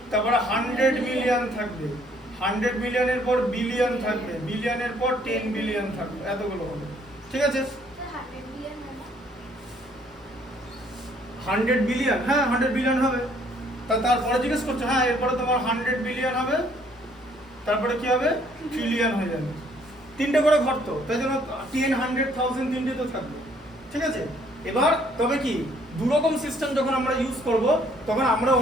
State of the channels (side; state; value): both; normal; correlation 0.64